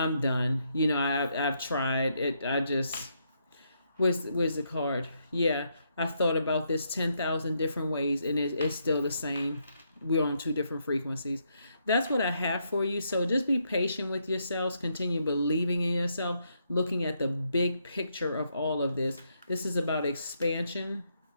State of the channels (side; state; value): both; inverted; correlation -0.77